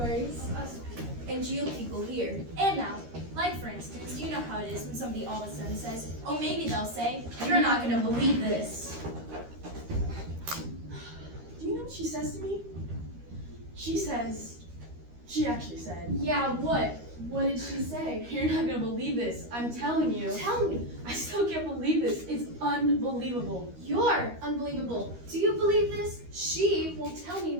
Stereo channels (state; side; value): late; left; 13 ms